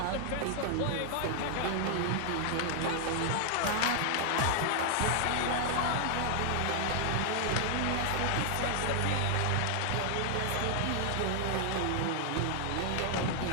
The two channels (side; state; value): both; different; correlation 0.00